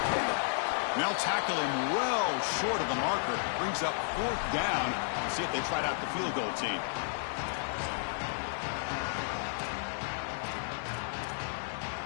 Now tackle him well short of the marker. Brings up fourth down. Let's see if they tried out the field goal team.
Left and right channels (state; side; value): silent; right; 56 dB below the other